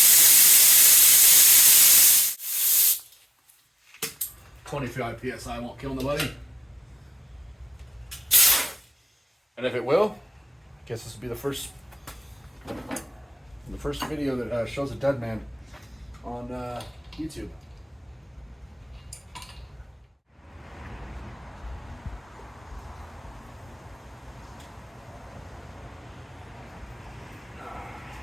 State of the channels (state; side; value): normal; both; correlation 0.96